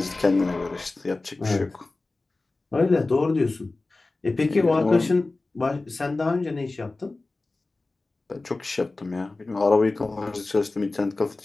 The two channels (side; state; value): right; quieter; 3.3 dB